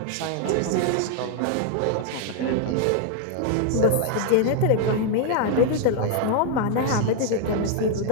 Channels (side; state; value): both; different; correlation 0.00